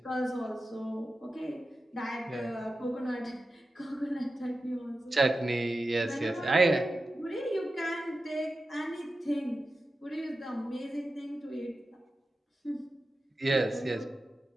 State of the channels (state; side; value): normal; both; correlation 0.92